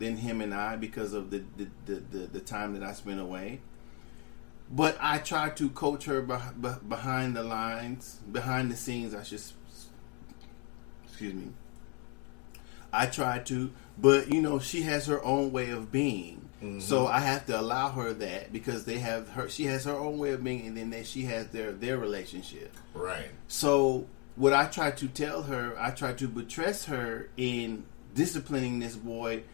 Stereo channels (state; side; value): quieter; right; 28.2 dB